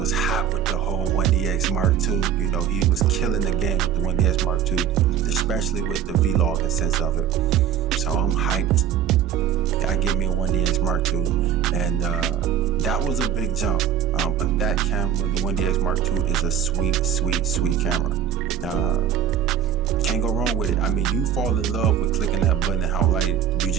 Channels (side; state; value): left; quieter; 9.2 dB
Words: hot with the whole 1DX Mark II. You know, he was killing the game with the 1DX Mark II, especially with the vlogging sense of it. So I'm hyped. I get me a 1DX Mark II. And that was a big jump. But that camera, the 1DX Mark II, is a sweet camera. Can't go wrong with it. I mean, you fall in love with clicking that button and how light you